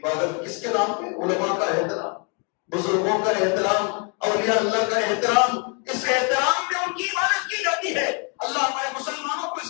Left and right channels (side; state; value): right; quieter; 36.7 dB